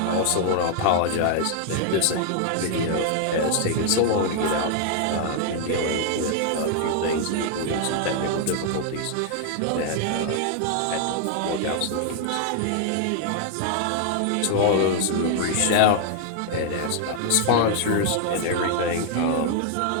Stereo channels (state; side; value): different; both; correlation 0.00